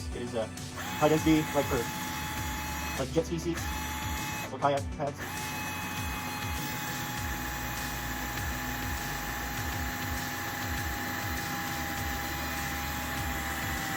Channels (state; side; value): identical; both; correlation 1.00